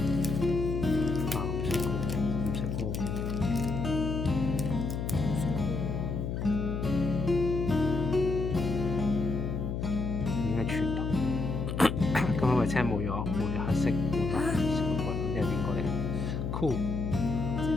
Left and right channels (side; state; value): left; noise; hum, 3 dB below the sound